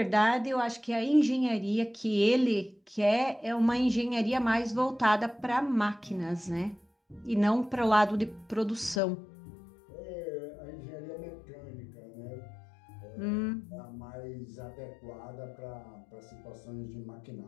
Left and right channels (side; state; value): right; drops out; at 9.0 s